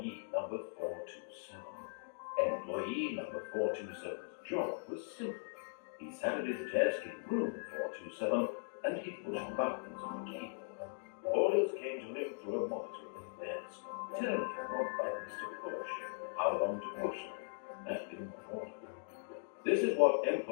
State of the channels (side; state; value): right; silent; digital silence